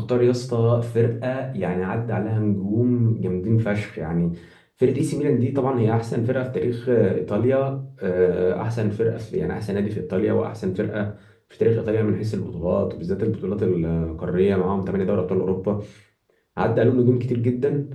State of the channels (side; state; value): both; identical; correlation 1.00